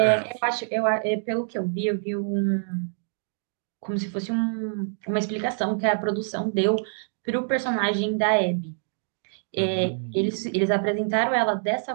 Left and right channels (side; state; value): left; silent; digital silence